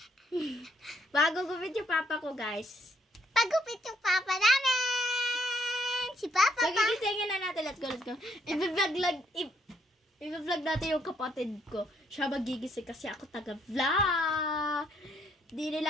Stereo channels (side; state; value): both; normal; correlation 0.71